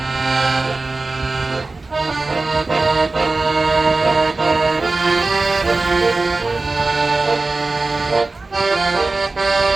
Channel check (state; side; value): quieter; left; 3.4 dB